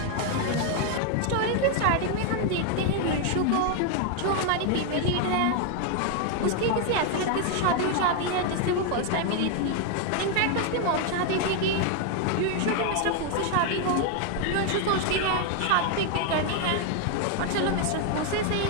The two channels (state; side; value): different; both; correlation 0.01